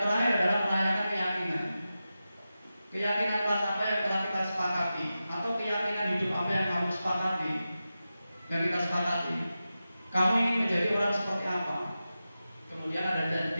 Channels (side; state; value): both; inverted; correlation -0.93